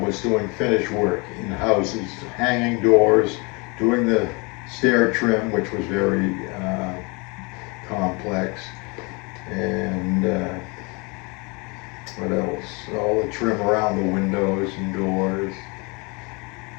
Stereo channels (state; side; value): quieter; right; 29.3 dB